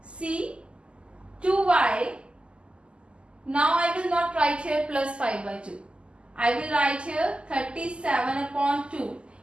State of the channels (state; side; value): late; left; 0.052 ms